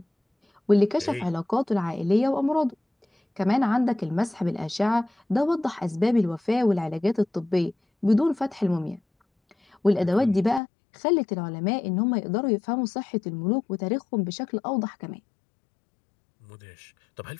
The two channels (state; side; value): drops out; right; at 10.6 s